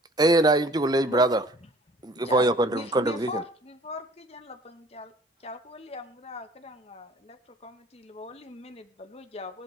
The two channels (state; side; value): normal; both; correlation 0.52